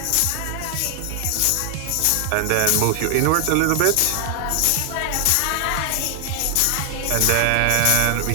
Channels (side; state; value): both; different; correlation 0.00